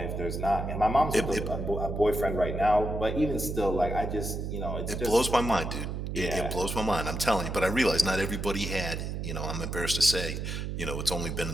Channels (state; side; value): noise; right; hum, 4 dB below the sound